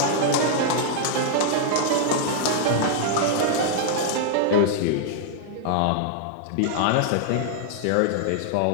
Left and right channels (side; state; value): both; different; correlation -0.01